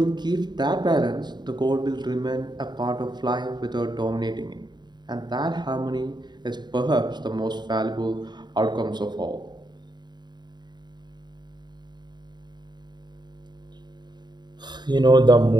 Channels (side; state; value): left; late; 0.21 ms